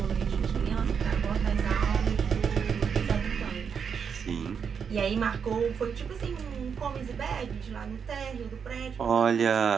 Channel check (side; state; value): left; quieter; 6.7 dB